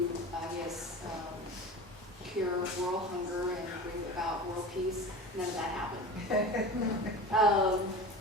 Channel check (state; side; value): normal; both; correlation 0.33